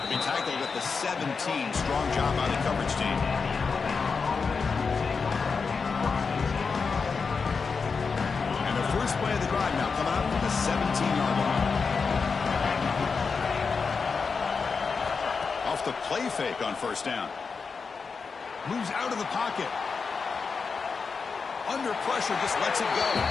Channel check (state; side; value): quieter; right; 5.1 dB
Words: He tackled at the 17. Strong job by the coverage team. And the first play of the drive now coming up from the 17-yard line. Off the play fake on first down. Moves out of the pocket. Under pressure, just lets it go.